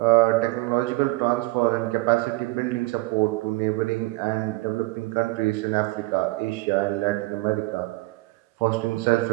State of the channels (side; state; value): left; quieter; 21.8 dB